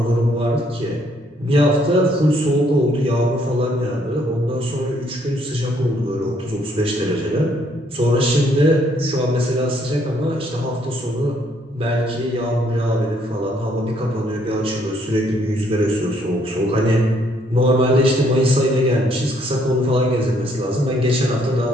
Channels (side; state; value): both; normal; correlation 0.68